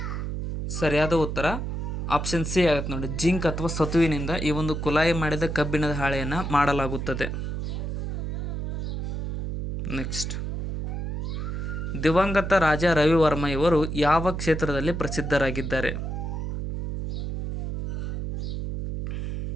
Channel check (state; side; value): noise; right; hum, 3 dB below the sound